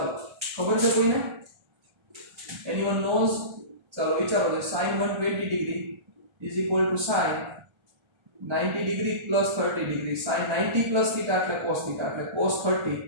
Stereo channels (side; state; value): left; late; 1.3 ms